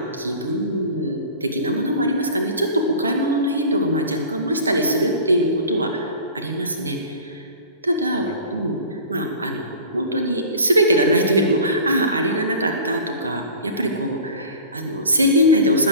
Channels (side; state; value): both; inverted; correlation -0.40